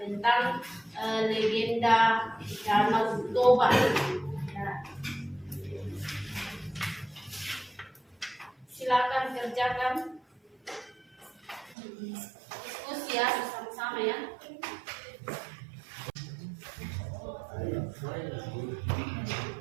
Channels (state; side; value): drops out; left; at 11.8 s